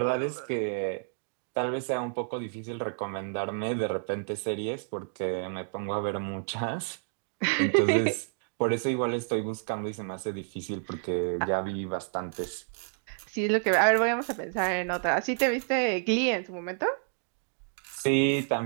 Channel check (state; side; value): silent; left; digital silence